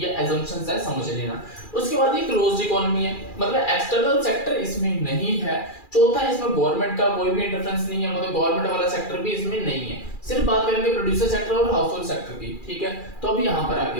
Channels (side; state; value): right; late; 2.4 ms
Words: एजम्पशंस है, समझ लेना। उसके बाद ये क्लोज्ड इकोनॉमी है, मतलब एक्सटर्नल सेक्टर इसमें नहीं है। चौथा, इसमें गवर्नमेंट का कोई भी इंटरफेरेंस नहीं है, मतलब गवर्नमेंट वाला सेक्टर भी इसमें नहीं है। सिर्फ बात करेंगे प्रोड्यूसर सेक्टर और हाउस होल्ड सेक्टर की, ठीक है। तो अब यहाँ पर